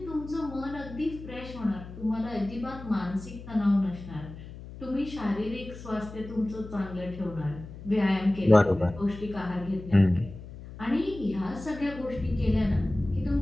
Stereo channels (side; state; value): left; noise; hum, 14 dB below the sound